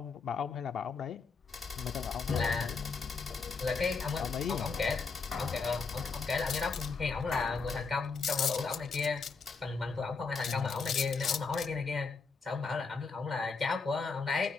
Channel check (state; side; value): quieter; right; 4.7 dB